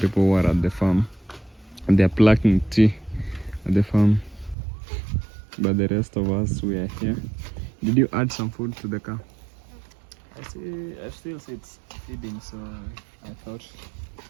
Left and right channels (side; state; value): left; drops out; at 4.5 s